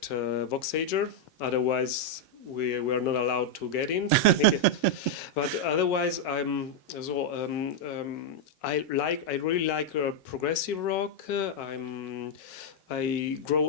voXager. Otherwise, we were not allowed to get in. I think, but otherwise, I really like progressive rock. I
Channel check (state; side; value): normal; both; correlation -0.02